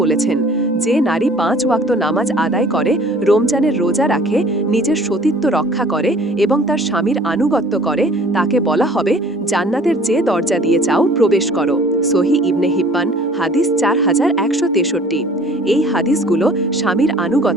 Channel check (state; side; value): normal; both; correlation 0.51